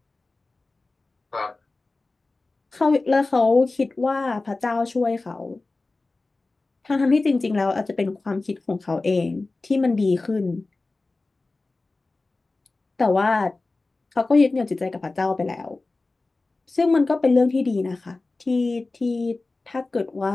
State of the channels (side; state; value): right; quieter; 3.4 dB